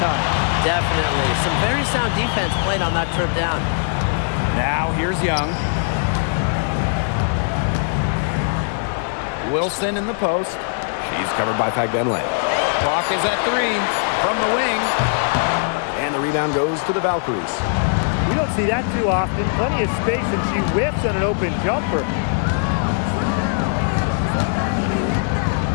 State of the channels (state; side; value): silent; right; 66 dB below the other